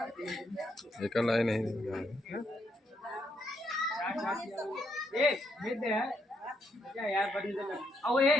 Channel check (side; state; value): both; normal; correlation 0.76